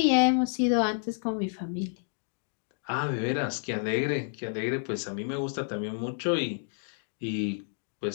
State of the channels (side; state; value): right; silent; 58 dB below the other